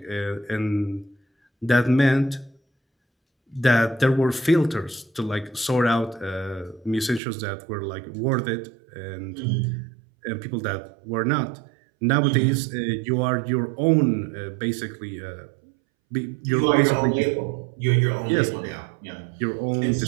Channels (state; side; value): drops out; left; at 7.2 s